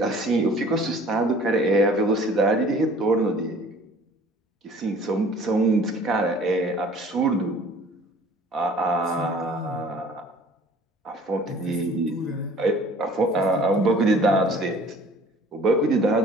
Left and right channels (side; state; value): both; normal; correlation 0.50